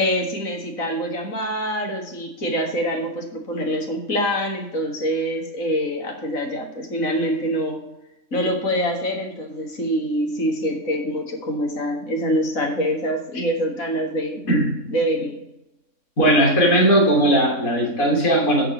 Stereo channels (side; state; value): right; late; 3.6 ms